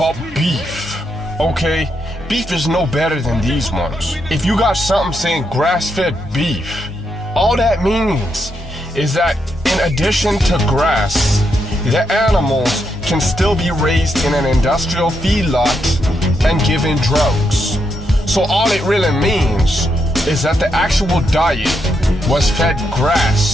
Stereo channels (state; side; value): normal; both; correlation 0.81